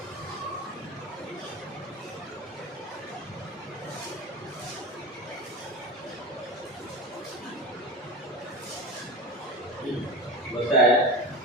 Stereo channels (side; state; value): both; normal; correlation 0.27